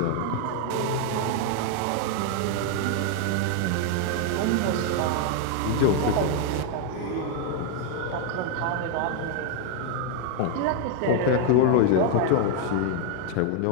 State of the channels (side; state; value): both; different; correlation 0.01